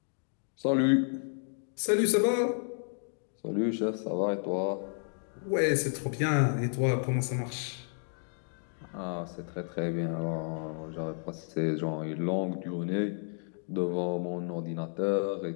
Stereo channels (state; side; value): silent; right; 57 dB below the other